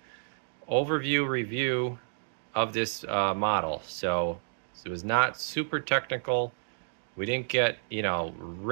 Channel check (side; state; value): left; silent; digital silence